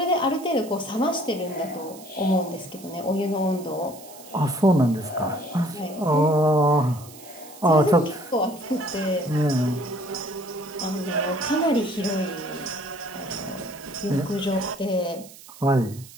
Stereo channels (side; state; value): right; noise; hiss, 19 dB below the sound